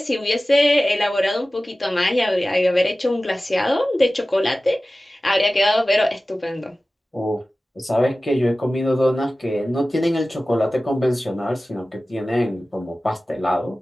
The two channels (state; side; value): normal; both; correlation 0.96